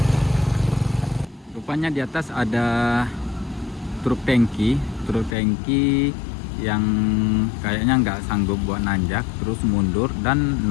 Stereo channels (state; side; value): drops out; right; at 5.4 s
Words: rupanya di atas ada truk tangki yang kayaknya nggak sanggup buat nanjak, terus mundur dan